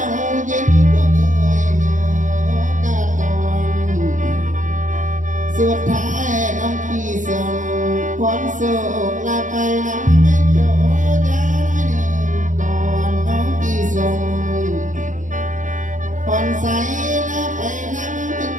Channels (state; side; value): late; left; 0.37 ms